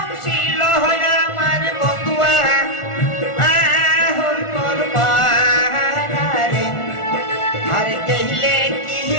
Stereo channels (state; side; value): late; right; 1.4 ms